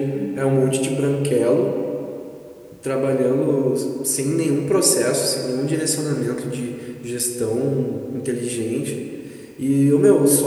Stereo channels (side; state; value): both; identical; correlation 1.00